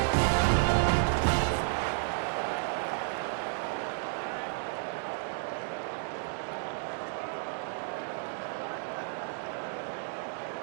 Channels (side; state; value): left; silent; 56 dB below the other